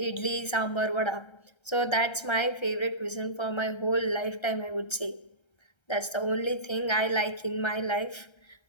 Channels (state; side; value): late; right; 1.3 ms